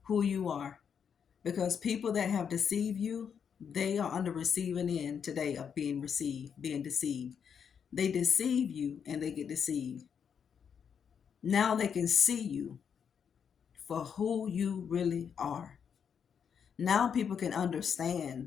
who you are. Because people that have deceived you, they are on the receiving end today of being deceived. They deceive you and they get deceived. Now they can see you for who you really are. Now people can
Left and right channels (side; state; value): right; quieter; 7.3 dB